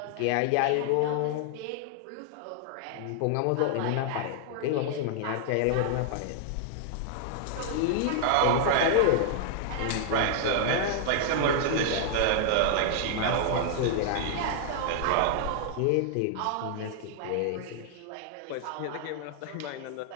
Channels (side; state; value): both; different; correlation -0.01